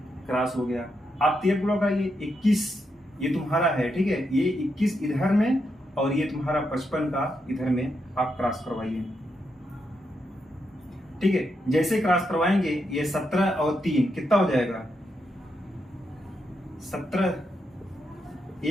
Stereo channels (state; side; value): normal; both; correlation 0.82